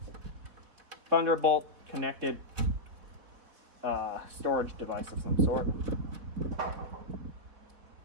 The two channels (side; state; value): left; late; 4.2 ms